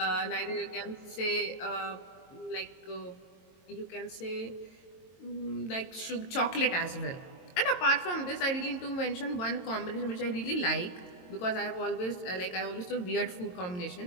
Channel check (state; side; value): late; right; 22 ms